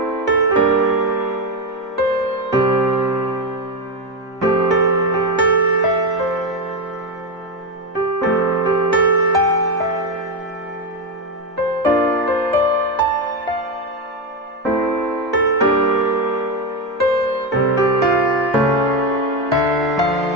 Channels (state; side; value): normal; both; correlation 0.12